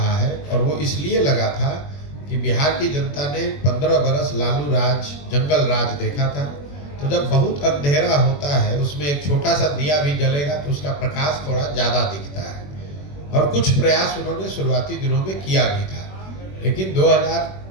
है, और वो इसलिए लगा था कि बिहार की जनता ने 15 बरस लालू राज, जंगल राज देखा था। तो जब बहुत अंधेरा होता है उसमें एक छोटा सा दिया भी जलेगा तो उसका प्रकाश थोड़ा ज़्यादा दिखता है, और कुछ प्रयास उन्होंने शुरुआती दिनों में किया भी था। लेकिन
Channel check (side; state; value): right; late; 21 ms